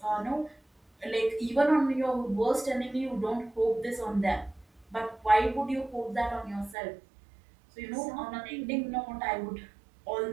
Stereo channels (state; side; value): drops out; left; at 6.8 s